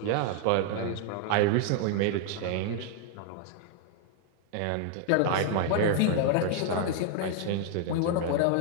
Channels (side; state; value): both; different; correlation 0.00